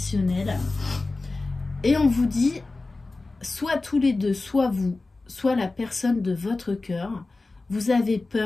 Et on vous dit, soit tous les deux, soit vous, soit la personne de votre cœur, vous avez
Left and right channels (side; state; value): right; quieter; 3.4 dB